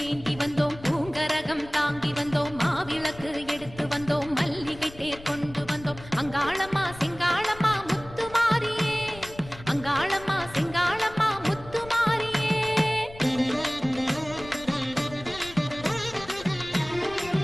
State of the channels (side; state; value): left; noise; rumble, 17 dB below the sound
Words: ஏந்தி வந்தோம், பூங்கரகம் தாங்கி வந்தோம், மாவிளக்கு எடுத்து வந்தோம், மல்லிகை தேர் கொண்டு வந்தோம். அங்காளம்மா சிங்காளம்மா முத்துமாரியே, அங்காளம்மா சிங்காளம்மா முத்துமாரியே.